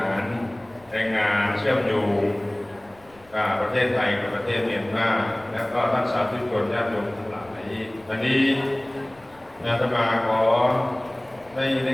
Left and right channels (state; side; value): noise; left; rumble, 29 dB below the sound